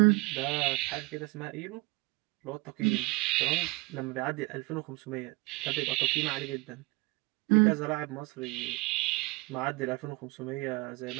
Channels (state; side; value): quieter; left; 24.9 dB